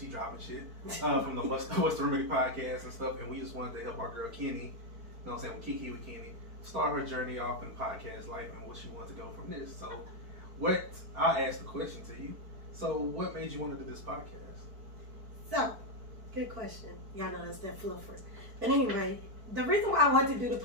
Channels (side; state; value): left; late; 4.5 ms